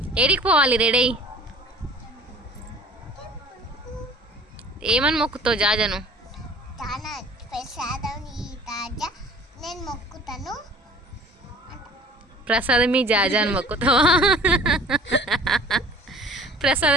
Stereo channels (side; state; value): both; normal; correlation 0.47